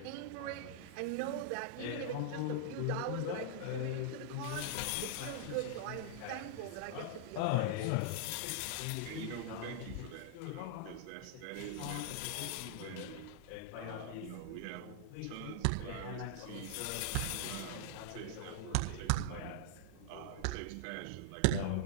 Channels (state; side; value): different; both; correlation -0.01